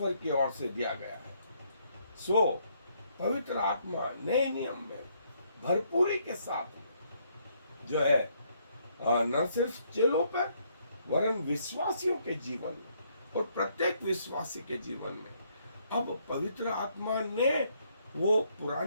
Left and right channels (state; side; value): inverted; both; correlation -0.71